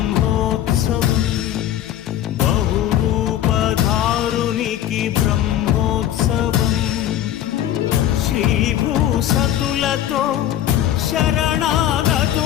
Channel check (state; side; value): quieter; right; 11.6 dB